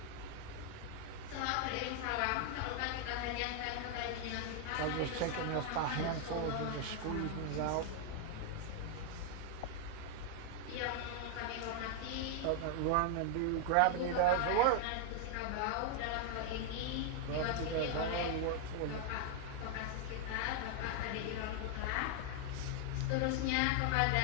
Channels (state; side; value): different; both; correlation 0.00